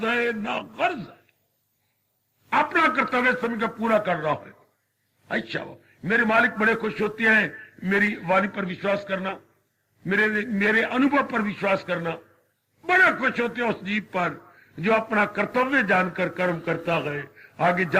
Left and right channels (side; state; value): both; identical; correlation 1.00